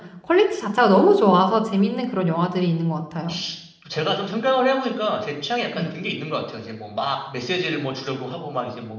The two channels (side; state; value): both; identical; correlation 1.00